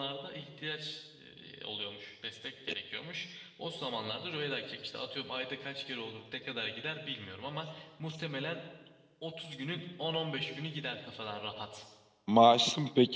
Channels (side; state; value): both; identical; correlation 1.00